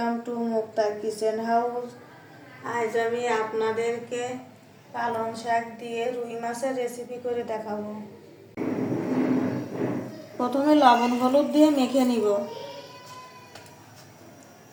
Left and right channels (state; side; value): identical; both; correlation 1.00